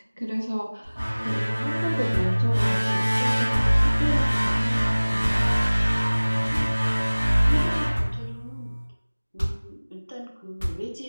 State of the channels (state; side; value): inverted; both; correlation -1.00